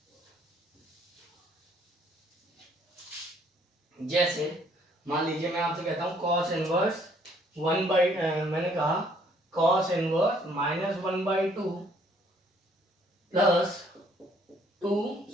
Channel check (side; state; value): both; normal; correlation 0.64